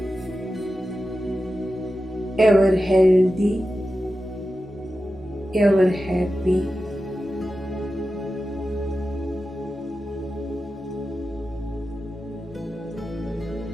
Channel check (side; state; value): both; normal; correlation 0.92